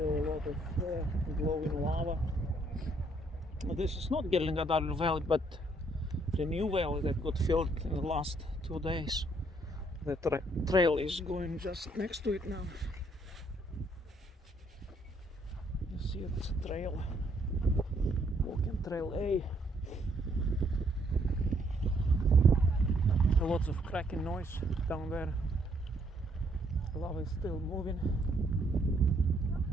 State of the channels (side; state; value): both; normal; correlation 0.69